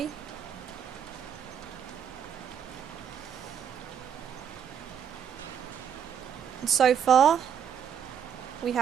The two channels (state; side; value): quieter; left; 8.4 dB